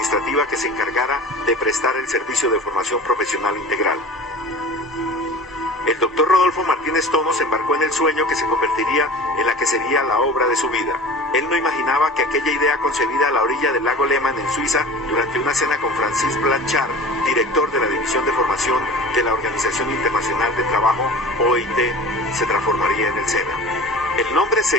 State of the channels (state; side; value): normal; both; correlation 0.39